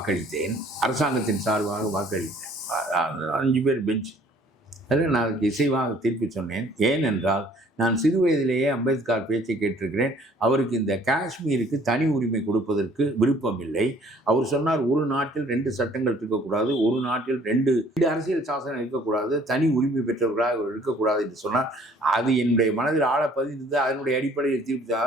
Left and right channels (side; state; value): both; normal; correlation 0.57